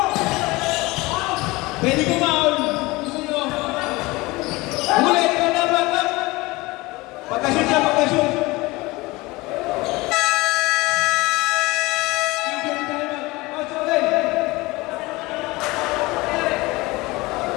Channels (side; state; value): right; quieter; 21.9 dB